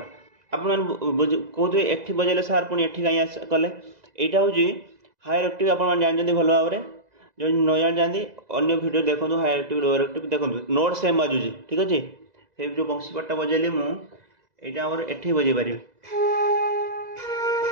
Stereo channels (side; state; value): left; late; 2.0 ms